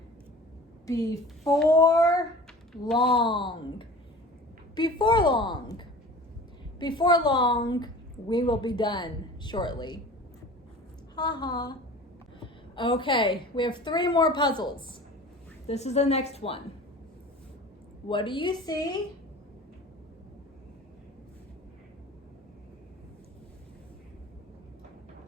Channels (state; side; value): normal; both; correlation 0.41